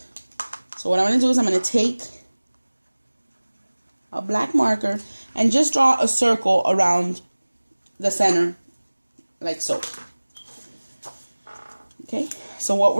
So what I'm going to do is I'm going to take a black marker and just draw a circle around the center like so. Okay, so what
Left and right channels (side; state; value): both; inverted; correlation -1.00